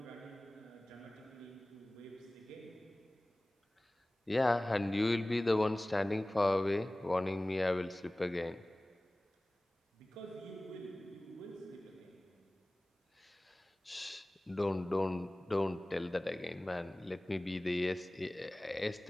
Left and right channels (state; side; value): normal; both; correlation 0.98